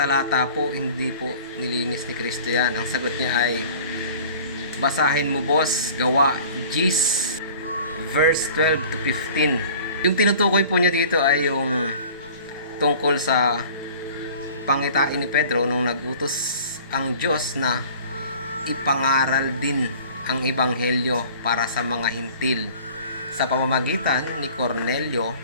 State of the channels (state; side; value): inverted; both; correlation -0.46